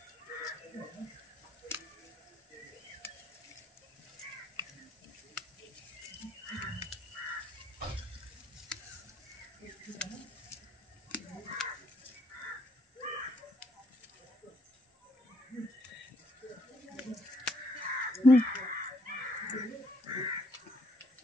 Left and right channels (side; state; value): both; normal; correlation 0.71